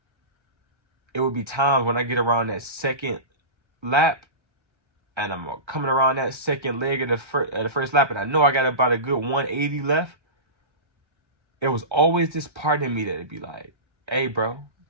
It would be times when I get around that second lap, and I'm coming around that second leg of the first lap, and I know I got about a good 180 left. It was always this part of me that'd be like, hey, bro,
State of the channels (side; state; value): left; late; 1.3 ms